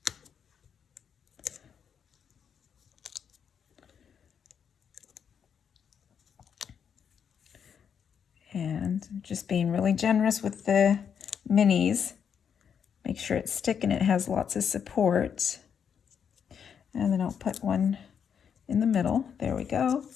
And just being really generous with the minis. Make sure it's stick and it has lots of support. And then I'll put one in the middle. There we go.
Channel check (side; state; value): right; quieter; 7.5 dB